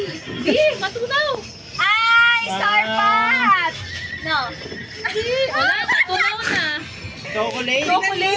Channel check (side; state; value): both; identical; correlation 1.00